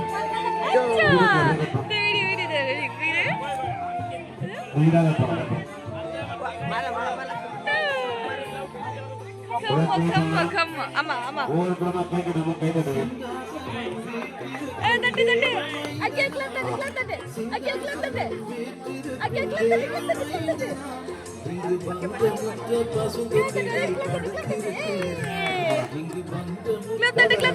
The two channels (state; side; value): identical; both; correlation 1.00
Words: ஆமா ஆமா தட்டு தட்டு அக்கே கிளப் தட்டு கிளப் தட்டு அக்கே கிளப் தட்டு அக்கே கிளப் தட்டு கிளப் தட்டு